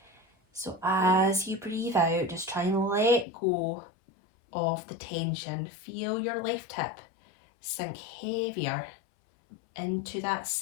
So as you breathe out, just try and let go of the tension. Feel your left hip sink heavier into that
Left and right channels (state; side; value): drops out; right; at 3.2 s